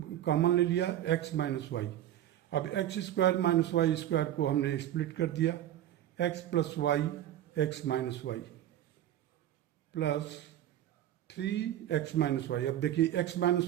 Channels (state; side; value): quieter; left; 12.2 dB